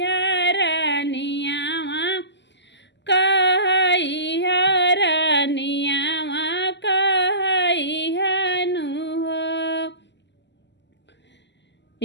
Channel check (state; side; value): late; right; 0.51 ms